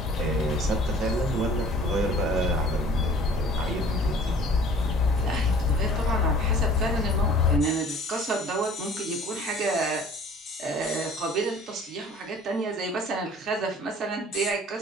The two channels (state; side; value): normal; both; correlation 0.50